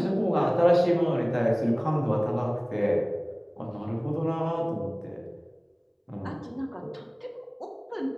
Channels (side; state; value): both; identical; correlation 1.00